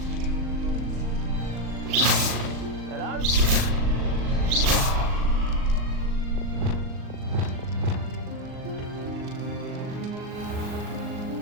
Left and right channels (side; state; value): left; late; 39 ms